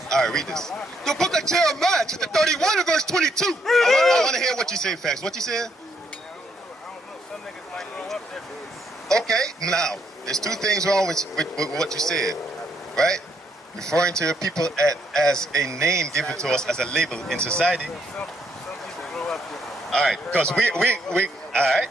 All right, read this. The book of Jeremiah, chapter 31 and verse 22. I want to hear what you say, facts. What you said? Okay, now, there's two things wrong with what you said, right? Referring to your people as a name given to us as a label in society. All right, because we all right,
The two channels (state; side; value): normal; both; correlation 0.73